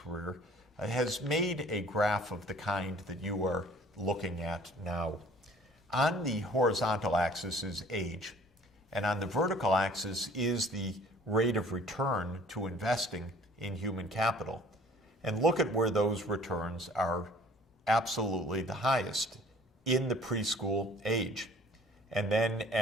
has made a graph of the kind that you are looking at now. On the horizontal axis is age, and on the vertical axis is the rate of return to investing in human capital. And look at where those returns are absolutely the highest in the preschool age. And then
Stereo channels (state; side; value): normal; both; correlation 0.52